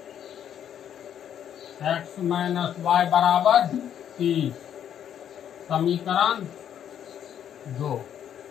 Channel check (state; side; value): quieter; right; 9.5 dB